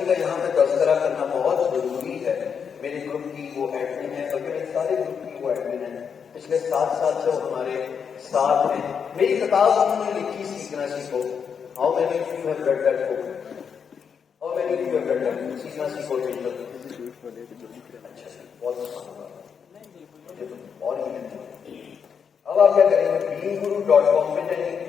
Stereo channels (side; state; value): right; quieter; 6.8 dB